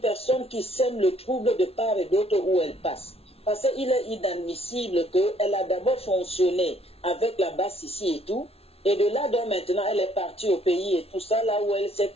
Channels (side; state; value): right; late; 0.29 ms